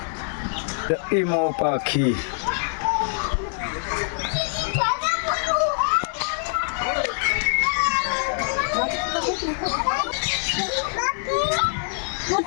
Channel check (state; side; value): silent; right; digital silence